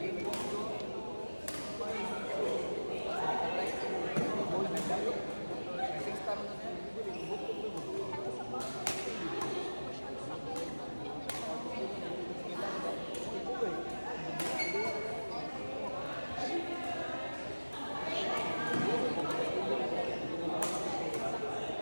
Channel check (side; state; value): both; inverted; correlation -1.00